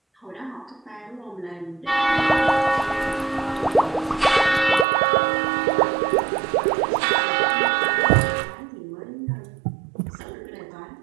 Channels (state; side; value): drops out; left; at 4.9 s